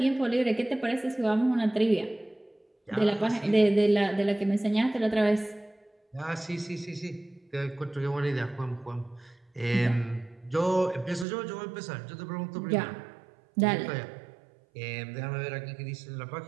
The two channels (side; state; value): left; drops out; at 11.2 s